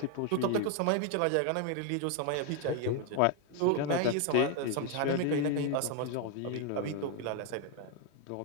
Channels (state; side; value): different; both; correlation 0.01